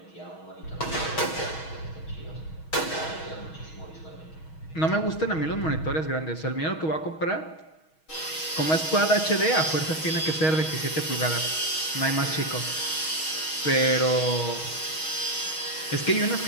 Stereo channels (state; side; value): late; right; 6.3 ms